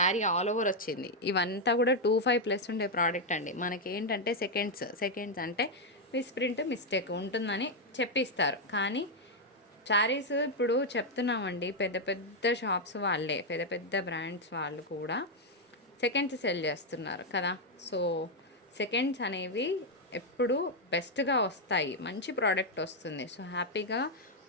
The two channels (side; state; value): both; normal; correlation 0.01